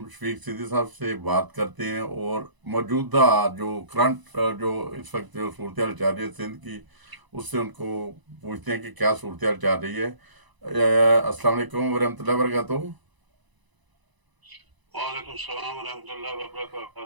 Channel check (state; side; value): late; left; 1.0 ms